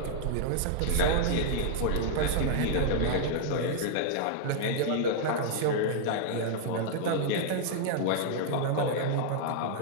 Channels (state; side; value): different; both; correlation -0.01